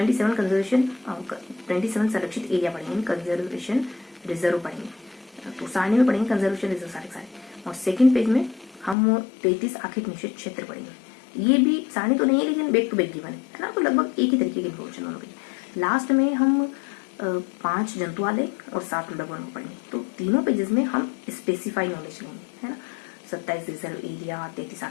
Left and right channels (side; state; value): right; drops out; at 9.0 s